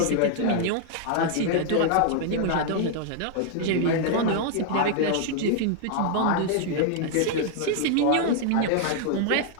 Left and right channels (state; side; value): different; both; correlation 0.00